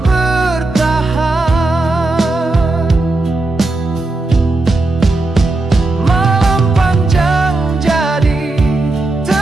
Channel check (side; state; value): left; quieter; 3.0 dB